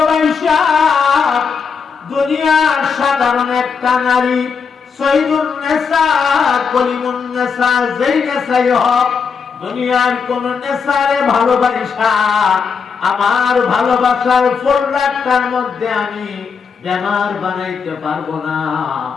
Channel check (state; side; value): quieter; right; 5.8 dB